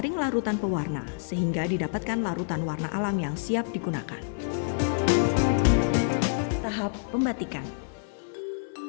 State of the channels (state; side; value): silent; right; 55 dB below the other